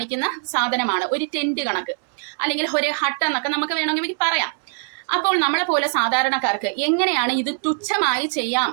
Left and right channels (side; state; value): left; silent; digital silence